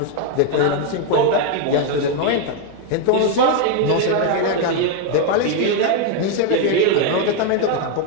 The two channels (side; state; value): both; different; correlation 0.01